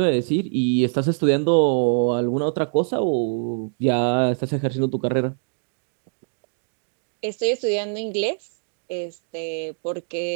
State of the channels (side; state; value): left; silent; digital silence